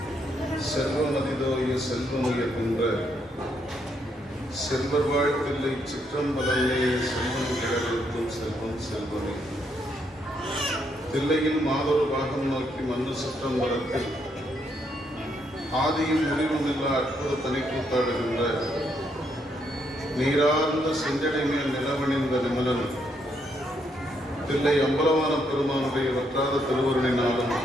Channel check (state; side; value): normal; both; correlation 0.75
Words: செல்வமதிதோய செல்வமுயர்கின்ற செல்வர் வாழ்த்தில்லை சிற்றம்பலமே செல்வம் கிழக்கும் செல்வம் செல்வமே தில்லையில் மாதொரு பாகம் நோக்கி மண்ணு சிற்றம்பலத்தில் ஆதியும் முடிவுமில்லா அற்புத தனிக்கூத்தாடுகின்ற நீரார்ந்த செஞ்சடை மேல் நிலவணிந்த நிமலன் தில்லை அம்பலவான பெருமானுடைய வற்றாத திருவருளினாலும்